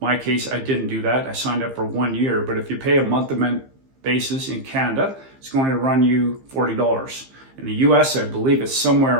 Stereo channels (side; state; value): left; late; 15 ms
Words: case, I didn't do that. I signed up for 1 year, but if you pay a month-to-month basis in Canada, it's going to run you $40. In the US, I believe it's